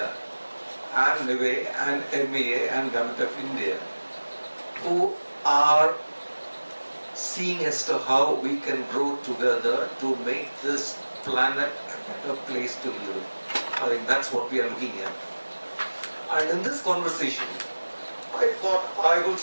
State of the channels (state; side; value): inverted; both; correlation -1.00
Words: and NIWE and MEA and Government of India, who are seeing as to how we can grow together to make this planet a better place to live. I think that's what we are looking at. And in this conversation, I thought I will